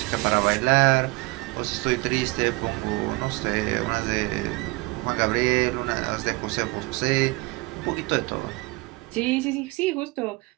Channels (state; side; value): quieter; left; 23.9 dB